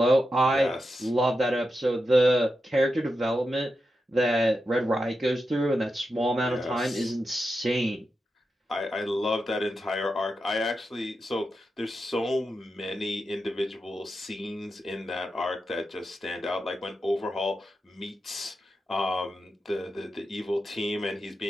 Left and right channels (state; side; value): normal; both; correlation 0.88